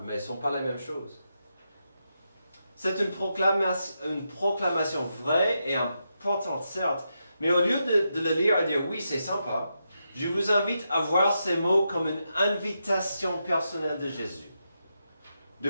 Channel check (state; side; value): inverted; both; correlation -0.85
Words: mais elles ne sont pas la même chose. C'est une proclamation vraie et importante, certes, mais au lieu de le lire et dire « Oui, c'est sympa », je vous invite à voir ces mots comme une invitation personnelle de Jésus. De